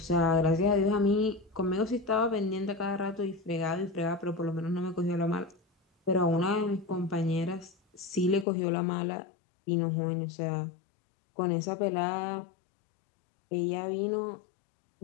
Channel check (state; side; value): drops out; right; at 8.5 s